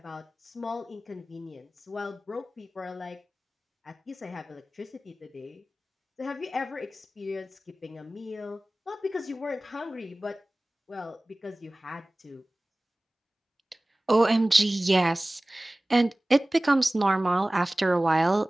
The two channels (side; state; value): both; normal; correlation 0.98